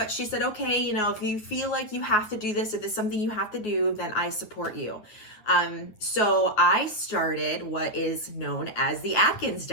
she said, okay, if you feel like you have to do this, if it's something you have to do, then I support you. So I started what is known as the Atkins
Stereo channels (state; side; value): late; right; 9.7 ms